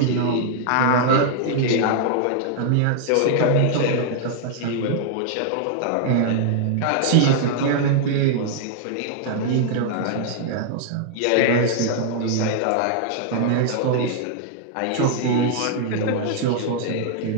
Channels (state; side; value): different; both; correlation -0.01